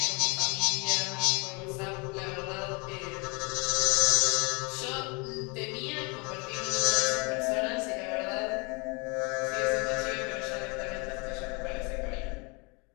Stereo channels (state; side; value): quieter; right; 30.7 dB